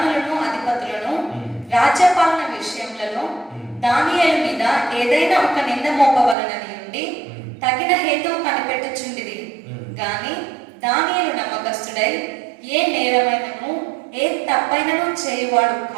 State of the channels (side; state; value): left; drops out; at 6.4 s